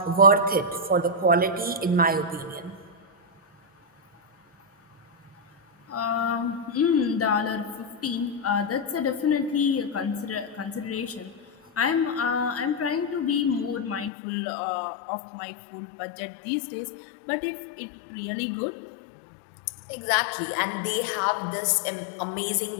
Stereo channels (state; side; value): drops out; right; at 14.1 s